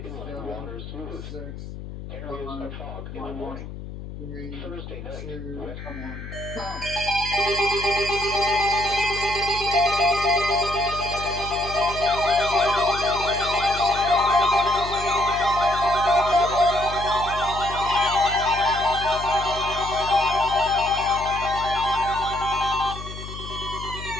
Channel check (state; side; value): noise; left; hum, 11 dB below the sound